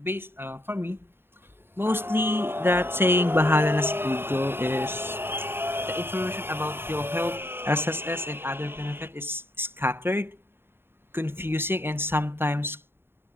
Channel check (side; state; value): left; late; 0.11 ms